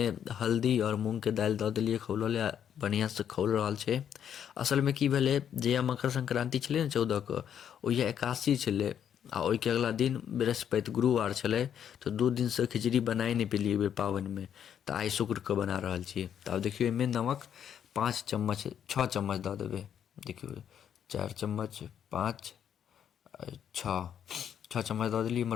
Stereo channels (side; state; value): right; quieter; 9.0 dB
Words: हल्दी और मूंग के दालि दऽ देलिए खौलले, बढ़िया से खौल रहल छै। असल में की भेलै, जहिया मकर संक्रांति छलै ने 14 के, ओहिया एकादशी छलै आ ओहि के अगला दिन बृहस्पति गुरुवार छलै। तो 2 दिन से खिचड़ी बनाए नहीं पेलिए बेर पावन में। तो आई शुक्र के बना रहल छी। तो अब देखियो, एहिमे नमक 5 चम्मच 6 चम्मच दऽ देबै। देखियो, 4 चम्मच 5 6 चम्मच दऽ देलिए।